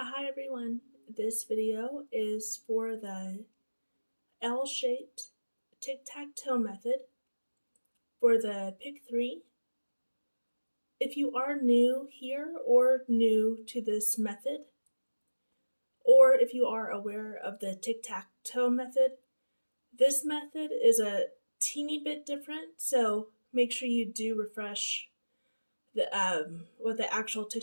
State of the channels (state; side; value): inverted; both; correlation -1.00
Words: Hi everyone, this video is for the L-shaped tic-tac-toe method for the pick 3. If you are new here or new to this method, or if you are aware of the tic-tac-toe method, this method is a teeny bit different, so make sure you do refresh what the actual